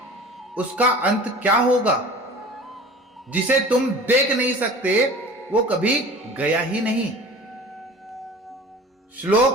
उसका अंत क्या होगा? जिसे तुम देख नहीं सकते वो कभी गया ही नहीं।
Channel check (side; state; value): both; normal; correlation 0.41